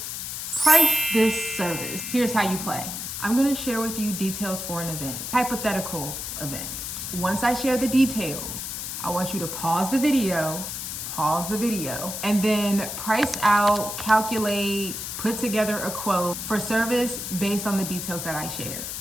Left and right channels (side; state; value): left; noise; hiss, 6 dB below the sound